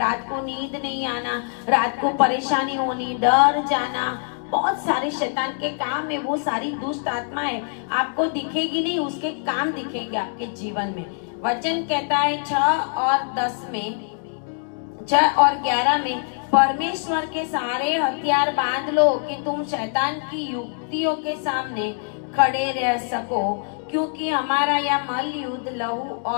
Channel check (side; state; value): right; silent; 63 dB below the other